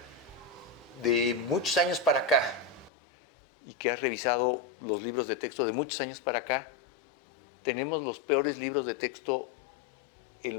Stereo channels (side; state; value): right; drops out; at 2.9 s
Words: de muchos años para acá, y que has revisado los libros de texto de muchos años para acá, ¿tenemos los peores libros de texto en